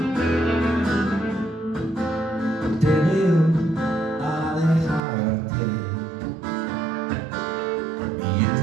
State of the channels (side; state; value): left; drops out; at 5.0 s